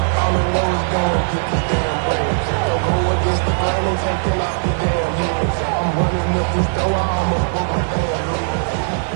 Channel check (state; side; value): silent; left; digital silence